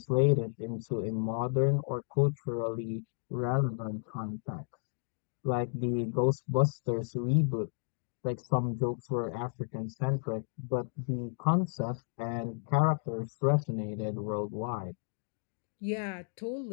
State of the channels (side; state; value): right; silent; digital silence